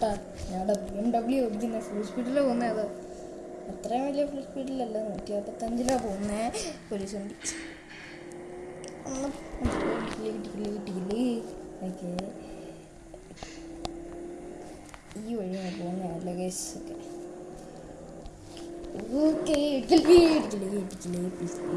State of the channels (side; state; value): both; identical; correlation 1.00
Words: ഞങ്ങളുടെ BMW ഓടിക്കുന്നത് ഫുൾ സ്പീഡിലാണ് പോകുന്നത്. അത് അത്രയും വലിയ ഫുൾ സ്പീഡിലല്ല, 155 പോകുന്നേ. പോലീസ് വണ്ടി. ഓക്കെ, ഈ വഴിയാണ് പോകുന്നതല്ല ഗൈസ്. ഓക്കെ ഇടിക്കലേ